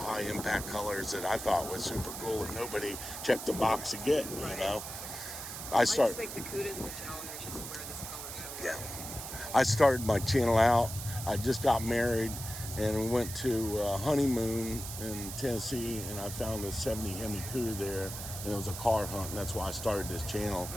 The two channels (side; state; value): right; noise; hiss, 8 dB below the sound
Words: impact colors that I thought was super cool that nobody checked the box to get, you know. I just think the Cudas and the Challengers just wear this color so well. Yeah. I started my channel out. I just got married and we went to a honeymoon in Tennessee, and I found a 70 Hemi Cuda there, and it was a car hunt, and that's why I started this channel.